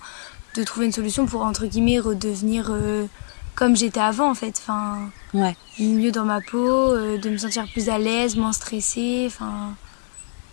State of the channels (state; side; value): silent; right; digital silence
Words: de trouver une solution pour, entre guillemets, redevenir comme j'étais avant en fait. Enfin, Ouais, mieux dans ma peau, de me sentir plus à l'aise, moins stressée. Enfin.